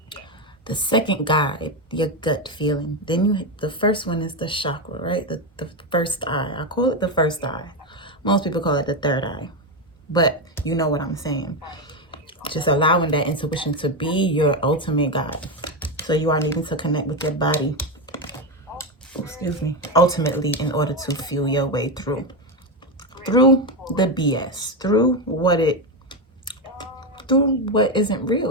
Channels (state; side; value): normal; both; correlation 0.11